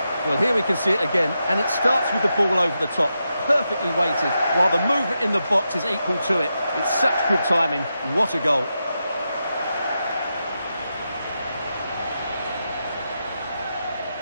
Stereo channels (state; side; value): inverted; both; correlation -0.87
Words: Well, here we can see it again, and it starts with the ball over the top, perfectly weighted, while the movement in the box is equal to it. It's such good timing. What a goal.